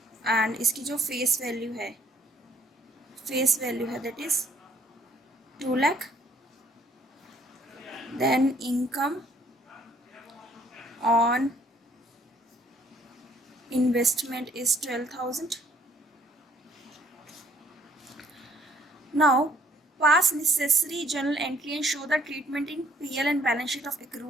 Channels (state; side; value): normal; both; correlation 0.62